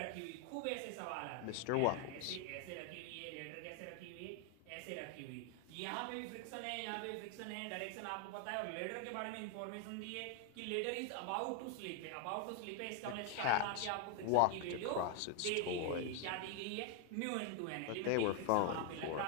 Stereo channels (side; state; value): both; different; correlation 0.00